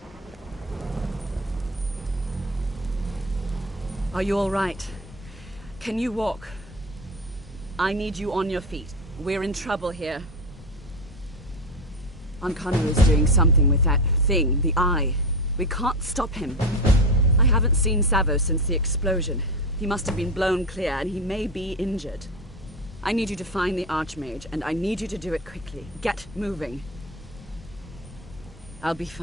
Are you all right? Can you walk? I need you on your feet. We're in trouble here. Ankano is doing something with that thing, the eye. We can't stop him. I haven't seen Savo since the explosion. He must have been blown clear, and he may be injured. I need you to find the Archmage, and I need you to do it quickly. Get moving. I'll be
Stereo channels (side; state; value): both; normal; correlation 0.20